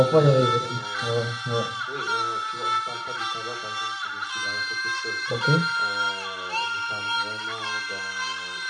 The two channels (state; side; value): identical; both; correlation 1.00